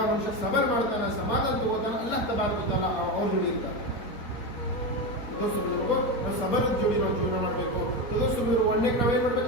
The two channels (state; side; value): late; right; 4.3 ms